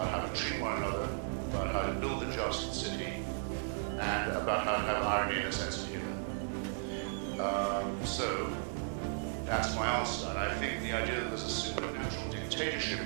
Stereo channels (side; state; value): left; silent; digital silence